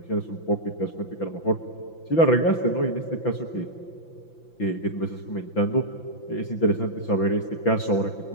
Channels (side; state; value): right; late; 5.9 ms